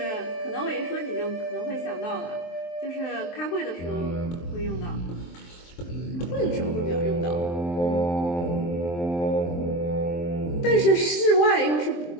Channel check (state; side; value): late; right; 23 ms